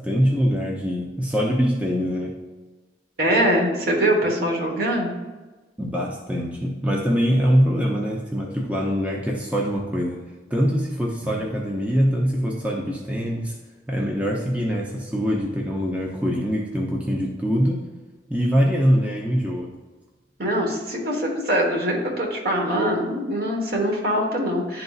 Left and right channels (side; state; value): both; normal; correlation 0.69